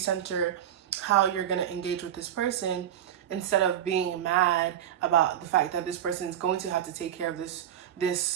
how you're going to engage with this person, instead of being mad about the fact that this person is going to have to take care of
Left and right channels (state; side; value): quieter; left; 10.5 dB